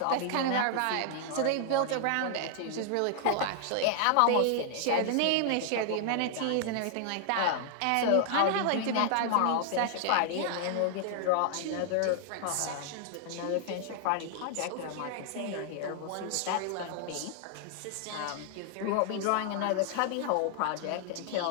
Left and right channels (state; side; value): different; both; correlation -0.01